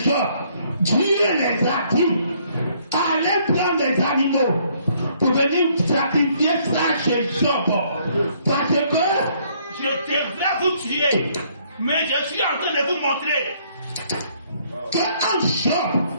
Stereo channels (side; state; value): both; inverted; correlation -0.66